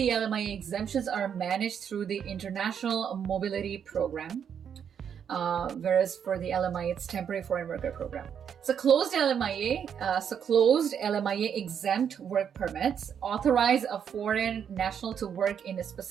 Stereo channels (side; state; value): left; quieter; 8.0 dB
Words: LMIA exemptions are managed through the International Mobility Program. Whereas for the LMIA, it's Temporary Foreign Worker Program. So closed LMIA exempt work permits authorize a foreign national to work in a